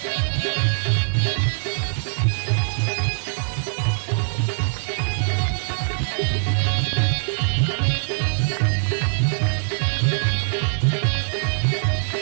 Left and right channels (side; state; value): left; silent; digital silence